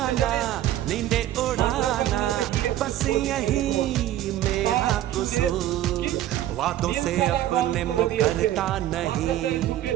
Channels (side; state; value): left; quieter; 13.1 dB